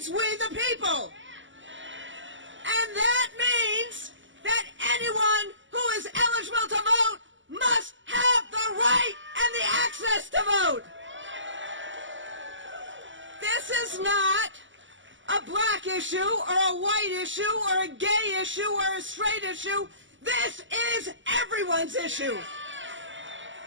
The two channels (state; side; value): late; left; 0.55 ms